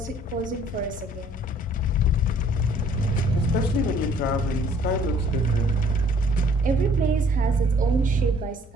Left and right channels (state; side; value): normal; both; correlation 0.58